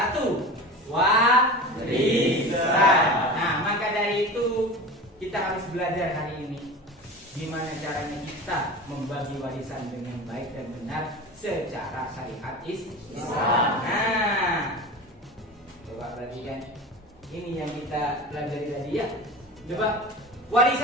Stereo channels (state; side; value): normal; both; correlation 0.32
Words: warisan. Nah, maka dari itu kita harus belajar hari ini gimana caranya kita membagi warisan dengan baik dan benar secara syariat Islam. Nah, coba perhatikan. Ini yang kita pelajari tadi ya. Coba,